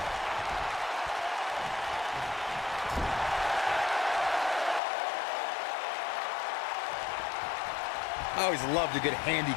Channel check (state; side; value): drops out; right; at 4.8 s